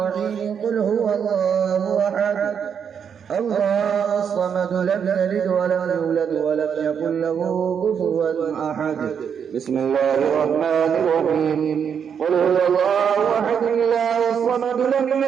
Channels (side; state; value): left; quieter; 7.5 dB